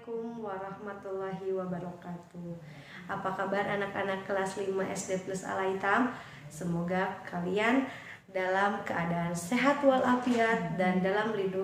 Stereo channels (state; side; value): identical; both; correlation 1.00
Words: warahmatullahi wabarakatuh. Apa kabar anak-anak kelas 5 SD plus Al-Aitam? Semoga kalian dalam keadaan sehat walafiat dan dalam